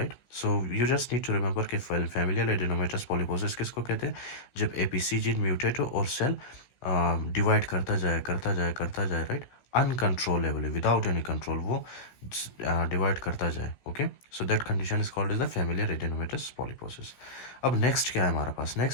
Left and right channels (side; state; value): right; late; 16 ms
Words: So you just need to remember कि फैमिलियल एडिनोमेटस पॉलिपोसिस किसको कहते हैं? जब एपीसी जीन म्यूटेट हो और सेल डिवाइड करता जाए, करता जाए, करता जाए, right, uncontrollably, without any control वो डिवाइड करता जाए. Okay, so that condition is called as the familial adenomatous polyposis. अब नेक्स्ट क्या है हमारे पास?